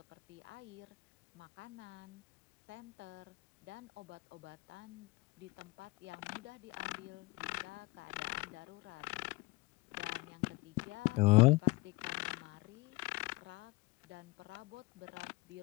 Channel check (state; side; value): quieter; right; 22.4 dB